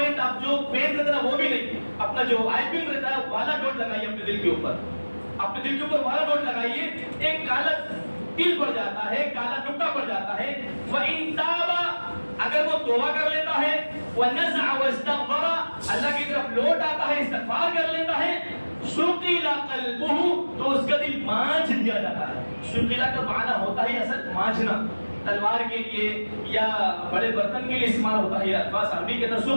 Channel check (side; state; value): both; inverted; correlation -1.00